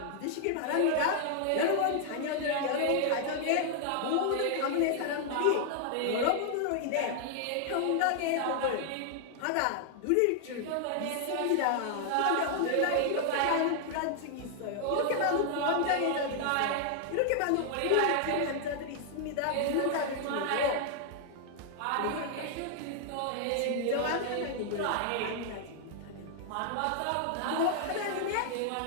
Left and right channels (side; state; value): both; different; correlation 0.00